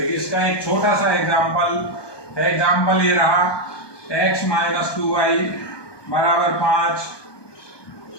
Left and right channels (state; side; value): late; right; 1.2 ms